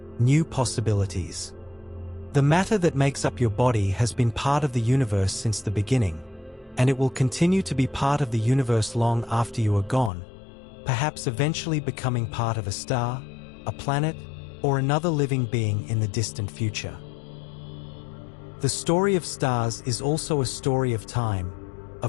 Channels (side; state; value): right; drops out; at 10.1 s